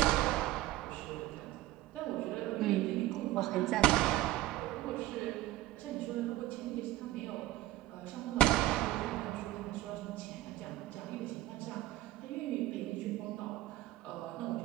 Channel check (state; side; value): quieter; left; 15.7 dB